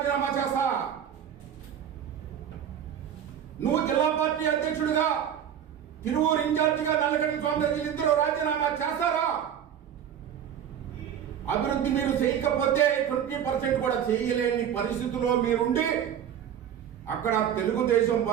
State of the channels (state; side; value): quieter; left; 9.3 dB